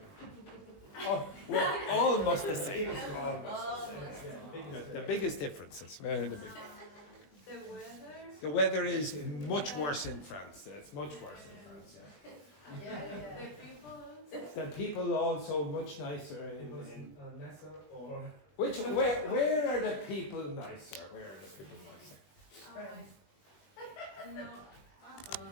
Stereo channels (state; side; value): late; right; 20 ms